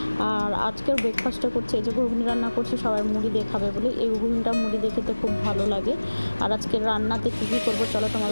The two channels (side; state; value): both; inverted; correlation -1.00